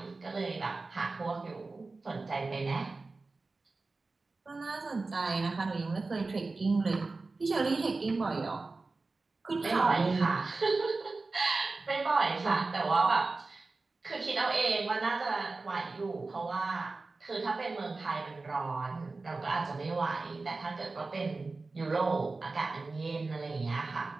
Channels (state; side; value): quieter; left; 3.6 dB